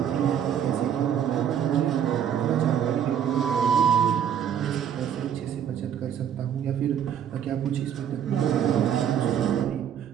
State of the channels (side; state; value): left; quieter; 9.0 dB